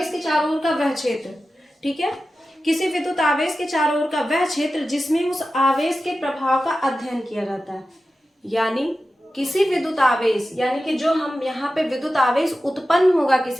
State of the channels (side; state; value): both; normal; correlation 0.93